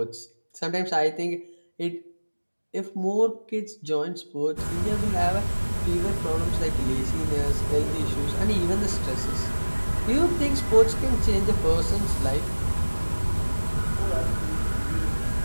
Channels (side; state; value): both; inverted; correlation -1.00